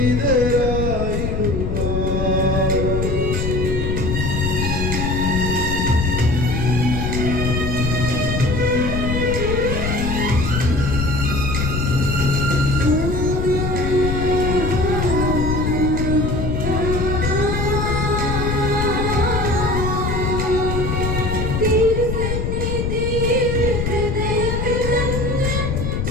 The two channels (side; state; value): left; noise; rumble, 1 dB below the sound